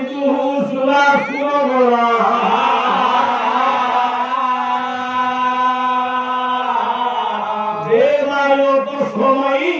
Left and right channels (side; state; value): both; identical; correlation 1.00